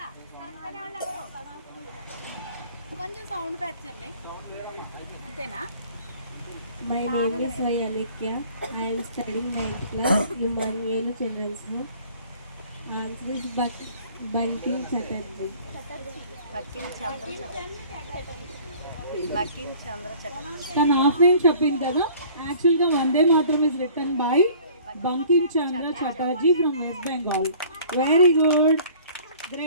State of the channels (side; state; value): both; inverted; correlation -0.51